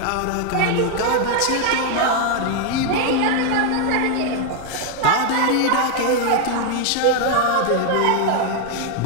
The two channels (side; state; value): both; different; correlation 0.00